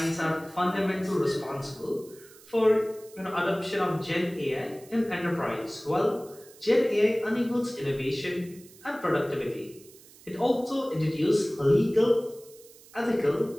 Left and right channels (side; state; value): right; noise; hiss, 23 dB below the sound